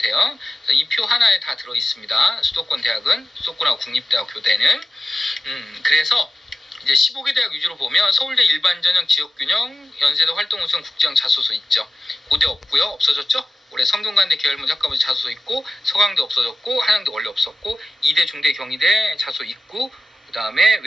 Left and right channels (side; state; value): both; normal; correlation 0.93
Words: 이 표 하나에 다 들어 있습니다. 수도권 대학은, 수도권하고 국립대학 교대는. 그래서 이제 15개 대학 위주로 보면 서울대 일반전형 지역균형, 연세대 활동우선 국제형 자소서 있죠. 고대 없고요. 없어졌죠? 올해 성균관대 계열문 학과부 자소서 있고, 서강대 없어졌고, 한양대 원래 없었고, 이대, 중대, 경희대 자소 있고, 그 다음에